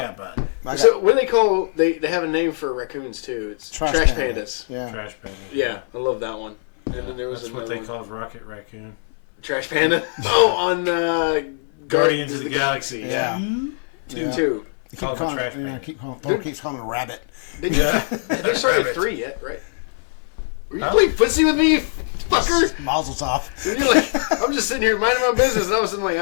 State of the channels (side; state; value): right; silent; 61 dB below the other